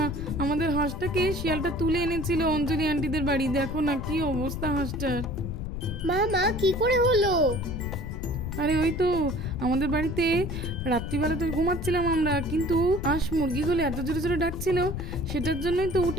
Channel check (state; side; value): noise; left; rumble, 5 dB below the sound